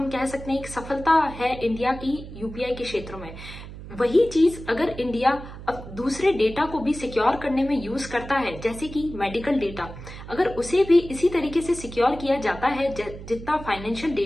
कह सकते हैं, एक सफलता है इंडिया की यूपीआई के क्षेत्र में। वही चीज अगर इंडिया अब दूसरे डेटा को भी सिक्योर करने में यूज करता है, जैसे कि मेडिकल डेटा, अगर उसे भी इसी तरीके से सिक्योर किया जाता है जितना फाइनेंशियल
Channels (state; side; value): noise; right; hum, 13 dB below the sound